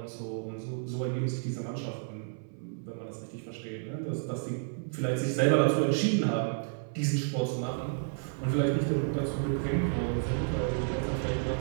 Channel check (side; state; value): left; silent; 57 dB below the other